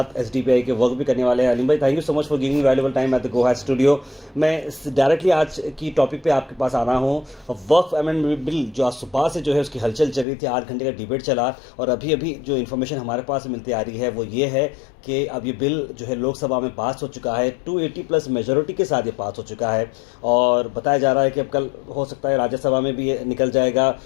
एसडीपीआई के वर्क भी करने वाले हैं। अलीम भाई, thank you so much for giving me valuable time at the गोहास स्टूडियो। मैं डायरेक्टली आज की टॉपिक पे आपके पास आ रहा हूँ। वर्क अमेंडमेंट बिल जो आज सुबह से जो है उसकी हलचल चल रही थी, 8 घंटे का डिबेट चला और अभी अभी जो इन्फॉर्मेशन हमारे पास मिलती आ रही है वो ये है कि अब ये बिल जो है लोकसभा में पास हो चुका है, 280 प्लस मेजॉरिटी के साथ ये पास हो चुका है और बताया जा रहा है कि अब कल हो सकता है राज्यसभा में भी ये निकल जाएगा।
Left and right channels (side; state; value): right; drops out; at 10.2 s